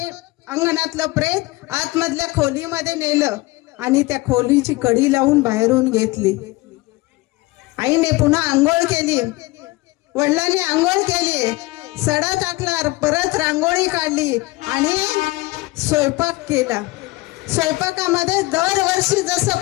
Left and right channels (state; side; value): quieter; right; 21.3 dB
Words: अंगणातलं प्रेत आतमधल्या खोलीमध्ये नेलं आणि त्या खोलीची कडी लावून बाहेरून घेतली. आईने पुन्हा आंघोळ केली, वडिलांनी आंघोळ केली, सडा टाकला, परत रांगोळी काढली आणि स्वयंपाक केला. स्वयंपाकामध्ये दरवर्षी जसं